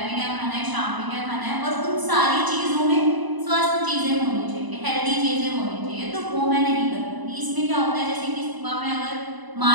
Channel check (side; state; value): left; late; 1.0 ms